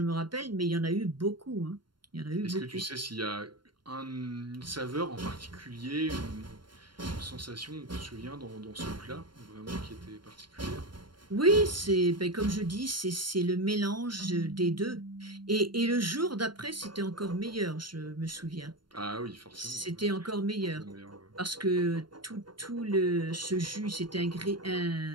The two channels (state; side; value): late; left; 0.72 ms